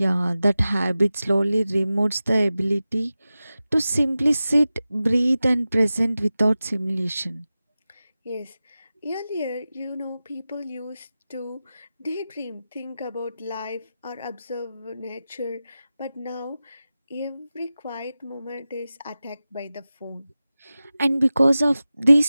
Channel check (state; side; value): inverted; both; correlation -0.95